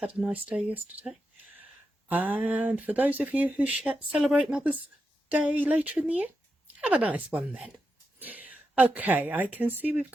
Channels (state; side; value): normal; both; correlation 0.87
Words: a nice day yesterday. And for those of you who celebrate Mother's Day later in the year, have a nice one then. Okay, I can see we've